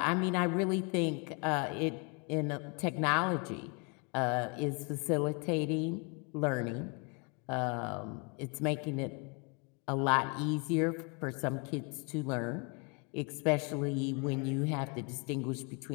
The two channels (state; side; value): quieter; right; 34.0 dB